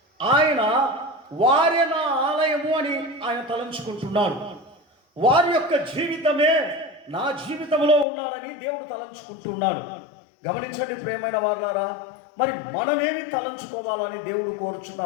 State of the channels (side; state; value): right; drops out; at 8.1 s